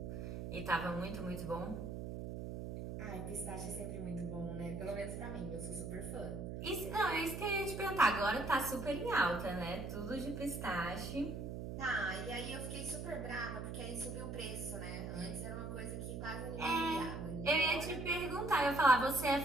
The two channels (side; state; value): right; noise; hum, 6 dB below the sound